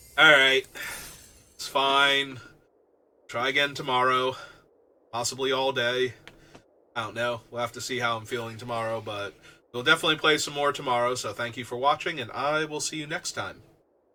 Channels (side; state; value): both; identical; correlation 1.00